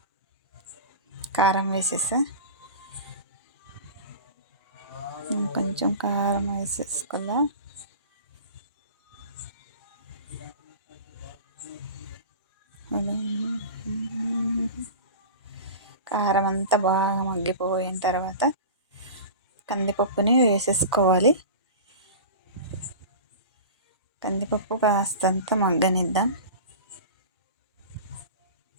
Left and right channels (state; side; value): inverted; both; correlation -0.33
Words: కారం వేసేసా. కొంచెం కారం వేసేసుకోవాలా. కారం అంతా బాగా మగ్గిపోయిన తర్వాత కందిపప్పుని వేసేసుకోవాలి. కందిపప్పు కాస్తంత మగ్గనిద్దాం.